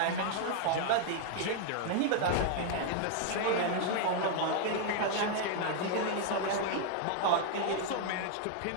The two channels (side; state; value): both; different; correlation 0.00